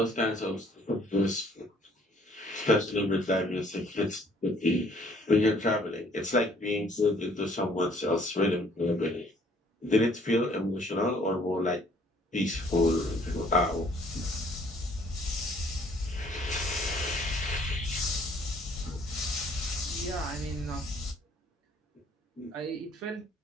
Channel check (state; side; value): normal; both; correlation 0.60